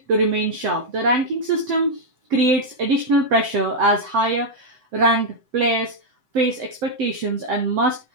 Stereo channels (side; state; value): left; late; 7.8 ms